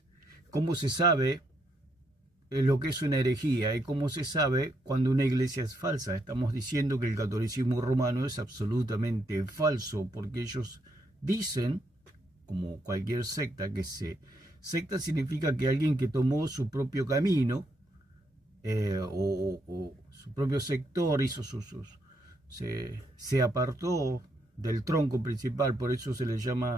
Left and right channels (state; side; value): normal; both; correlation 0.76